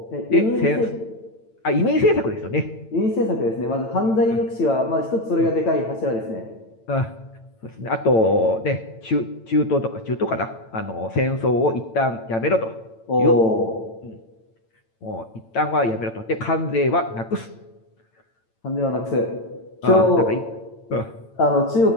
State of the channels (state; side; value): late; right; 9.0 ms